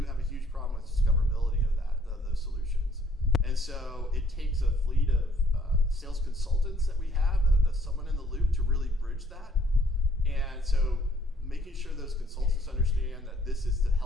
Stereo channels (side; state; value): both; normal; correlation 0.64